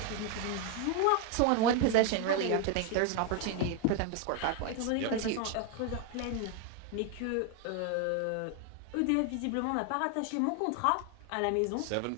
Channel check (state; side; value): different; both; correlation 0.01